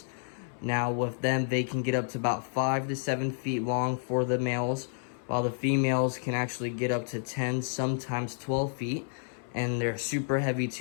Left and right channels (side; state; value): right; silent; 58 dB below the other